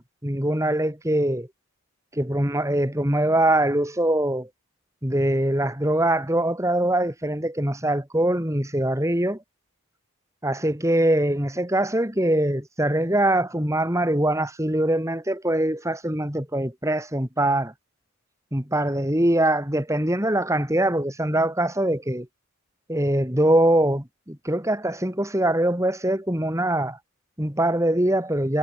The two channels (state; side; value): normal; both; correlation 0.77